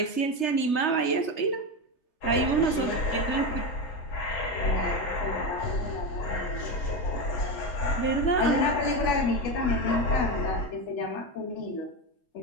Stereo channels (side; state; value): right; late; 3.3 ms